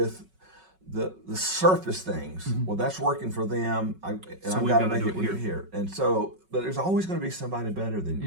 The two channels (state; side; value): late; left; 5.3 ms